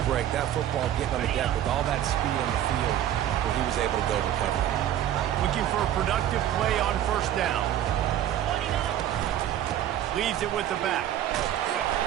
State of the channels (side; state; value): left; quieter; 11.4 dB